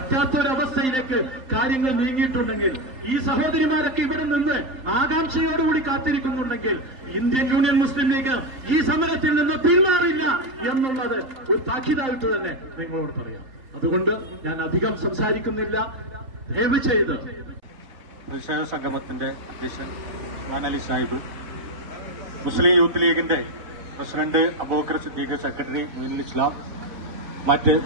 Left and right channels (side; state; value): left; late; 3.8 ms